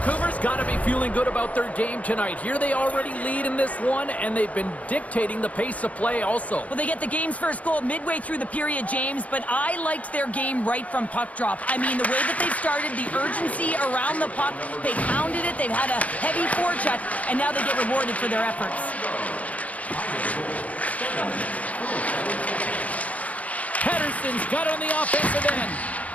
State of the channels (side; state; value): right; late; 0.069 ms